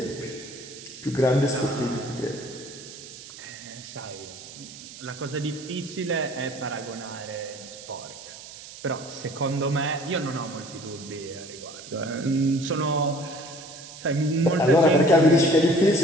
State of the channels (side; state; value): right; noise; hiss, 15 dB below the sound